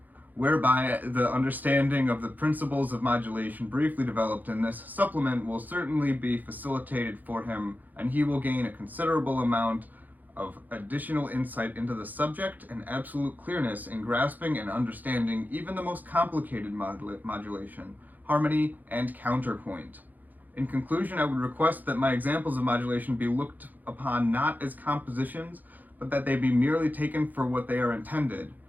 whereby the understanding of the principles of modulation briefly developed in this supplement will certainly be facilitated for him, and he will gain a considerable amount of additional insight into the subject and absolute clearness in grasping and understanding even the most complicated modulation, harmony, and counterpoint. In conclusion, I would request that my examples of modulation be looked upon not as compositions, but that they be merely taken for what they are intended,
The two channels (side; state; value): left; late; 0.084 ms